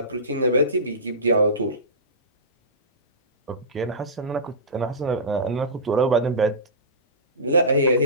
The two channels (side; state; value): both; normal; correlation -0.19